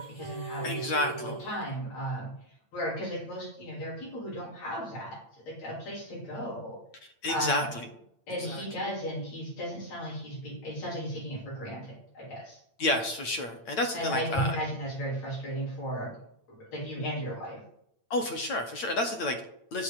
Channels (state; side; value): late; right; 8.8 ms